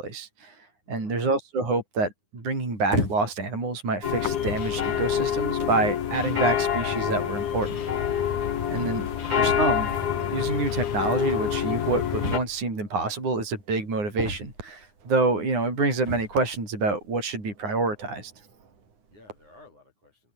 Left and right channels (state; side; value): late; left; 9.7 ms